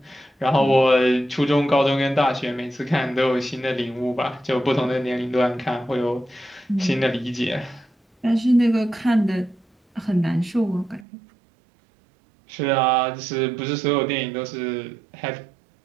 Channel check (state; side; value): drops out; left; at 11.1 s